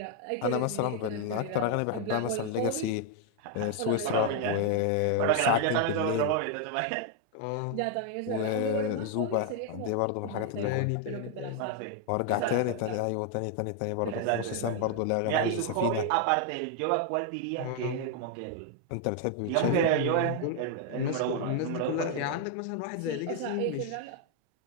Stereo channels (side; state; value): both; different; correlation 0.00